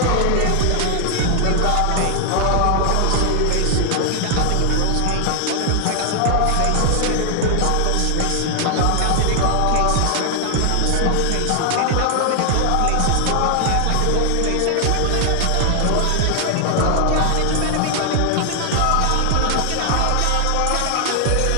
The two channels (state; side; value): different; both; correlation 0.00